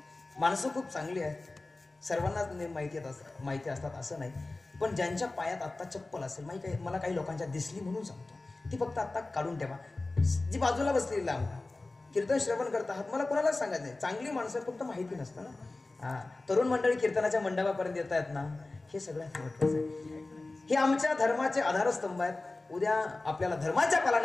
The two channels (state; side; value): quieter; right; 3.2 dB